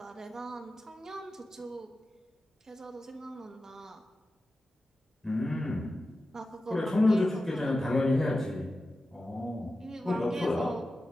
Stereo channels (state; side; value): normal; both; correlation 0.93